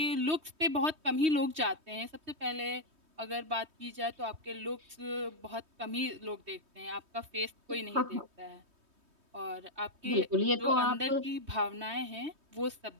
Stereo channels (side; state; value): left; late; 3.2 ms